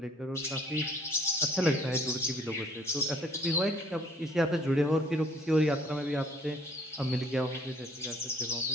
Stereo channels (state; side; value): normal; both; correlation 0.58